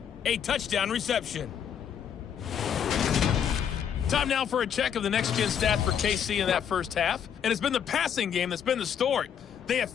a touchdown reception. Time now for a check of the next-gen stat for KC in that first half. And it's been the passing game that's been the story. They have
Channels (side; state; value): right; quieter; 8.3 dB